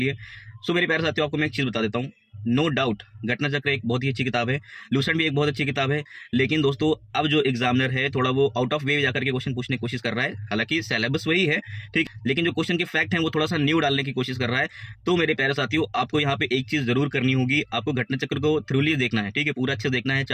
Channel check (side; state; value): both; identical; correlation 1.00